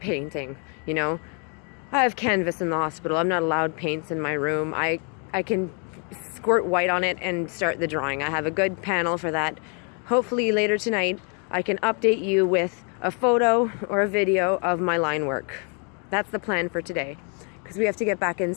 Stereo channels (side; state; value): right; quieter; 38.3 dB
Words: you know. I have canvas in the hospital. I'm not allowed paints in my room. I can squirt white on it and start the drawing. I have a good panel for that. Hopefully later tonight I can update you with a photo or a video of my line work. That's the plan for today, because we have to get back